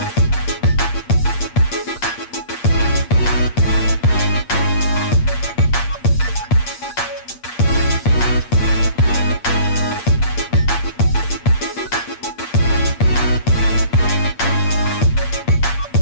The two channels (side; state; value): right; late; 8.5 ms